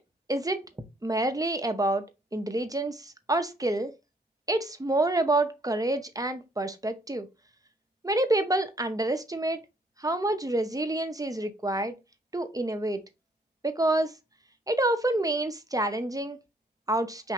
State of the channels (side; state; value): both; normal; correlation 0.66